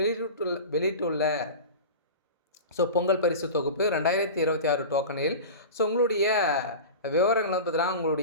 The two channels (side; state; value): both; inverted; correlation -0.31